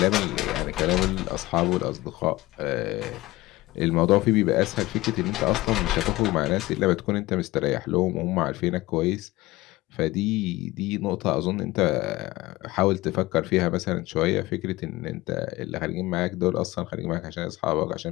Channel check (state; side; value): quieter; right; 19.0 dB